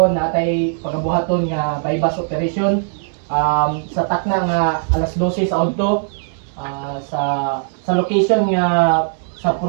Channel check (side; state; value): left; silent; 67 dB below the other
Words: natay pagabuhaton nga bypass operation sa takna nga alas 12 sa adto sa location nga sa